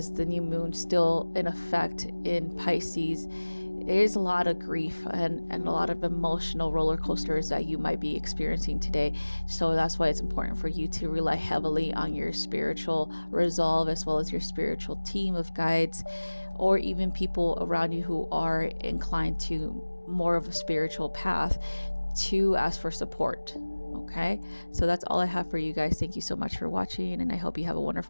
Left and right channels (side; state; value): both; inverted; correlation -1.00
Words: the new moon still in effect in Pisces, there's a lot of grief and a lot of emotional roller coasters that you might be experiencing today. So that's why it's important for you to rely heavily on your spiritual resolve, as well as your spiritual team of guides, or even people around you who are inclined to more of a spiritual path, to ask for support. Okay, so that's all I have for you guys. Thank you so much for watching, and I hope you have a